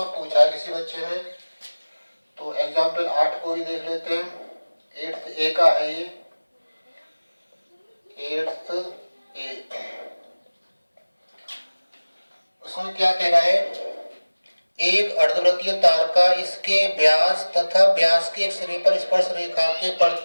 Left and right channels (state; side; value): inverted; both; correlation -1.00